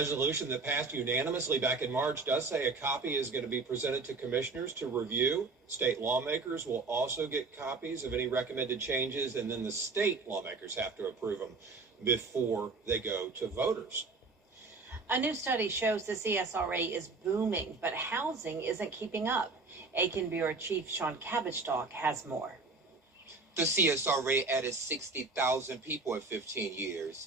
that passed unanimously back in March does say a copy is going to be presented to commissioners to review. State lawmakers will also get copies of any recommended changes, and then the state lawmakers have to approve them before they go to voters. A new study shows the CSRA is booming, but housing isn't keeping up. Aiken Bureau Chief Sean Cabbage-Stalk has more. The CSRA added 60,000 people in 15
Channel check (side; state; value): left; quieter; 3.9 dB